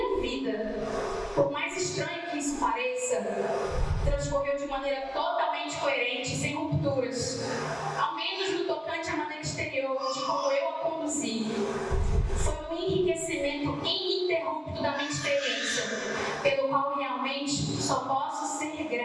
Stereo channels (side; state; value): both; identical; correlation 1.00